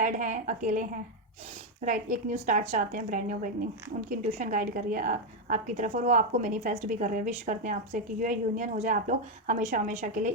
हैं, अकेले हैं, राइट, एक न्यू स्टार्ट चाहते हैं, ब्रांड न्यू बिगनिंग, उनकी इंट्यूशन गाइड कर रही है आपकी तरफ, और वो आपको मैनिफेस्ट भी कर रहे हैं, विश करते हैं आपसे कि ये यूनियन हो जाए, आप लोग हमेशा हमेशा के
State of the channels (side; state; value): both; normal; correlation 0.04